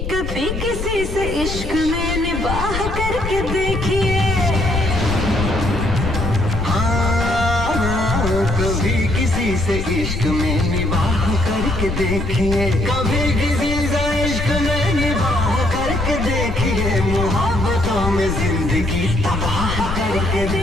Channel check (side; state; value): left; noise; rumble, 6 dB below the sound